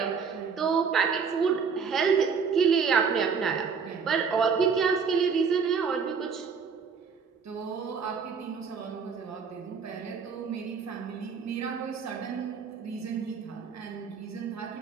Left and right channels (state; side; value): quieter; left; 5.9 dB